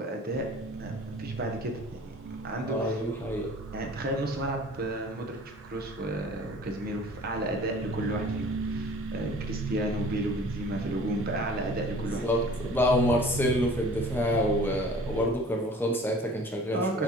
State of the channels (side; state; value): both; normal; correlation 0.47